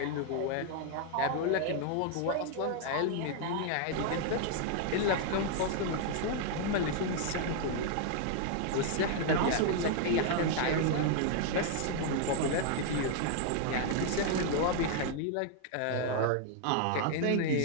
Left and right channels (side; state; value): both; different; correlation 0.00